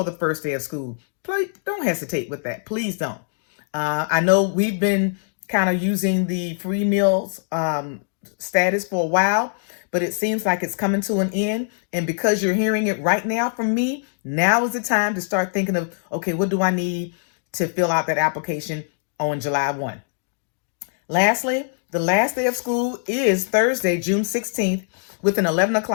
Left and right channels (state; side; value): silent; right; digital silence